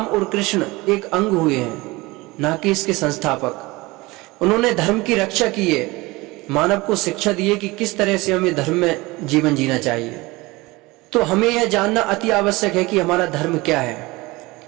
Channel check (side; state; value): left; quieter; 22.0 dB